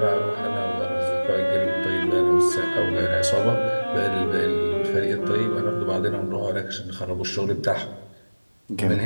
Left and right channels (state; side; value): inverted; both; correlation -1.00